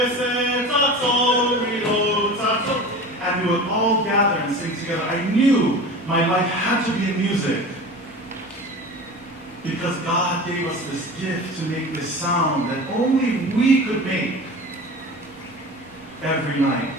we would all gather and sing together. I knew my life had to be in music because God gave us this gift to make this sound that only we could make every night.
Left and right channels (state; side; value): normal; both; correlation 0.34